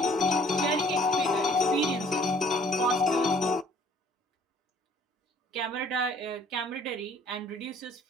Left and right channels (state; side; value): normal; both; correlation 0.57